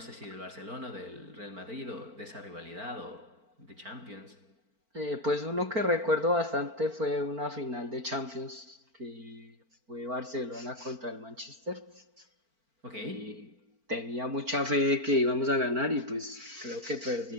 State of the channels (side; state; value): left; late; 4.4 ms